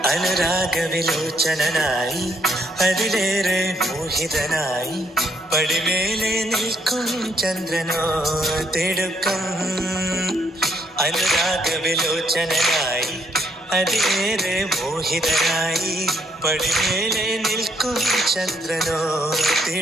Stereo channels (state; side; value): normal; both; correlation 0.71